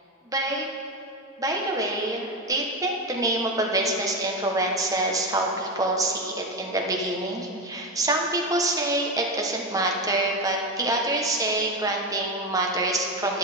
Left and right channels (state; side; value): normal; both; correlation 0.15